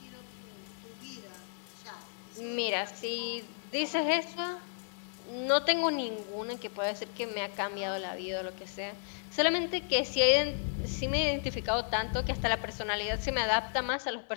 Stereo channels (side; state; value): right; silent; 56 dB below the other